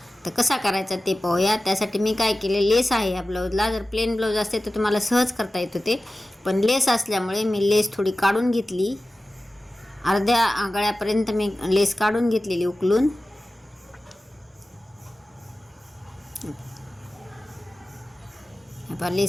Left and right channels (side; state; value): both; normal; correlation 0.95